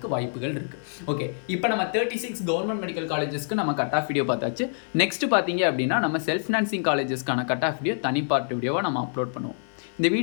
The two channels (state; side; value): silent; right; digital silence